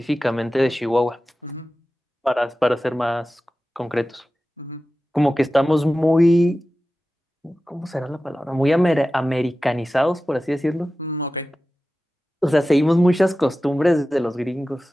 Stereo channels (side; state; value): both; normal; correlation 0.95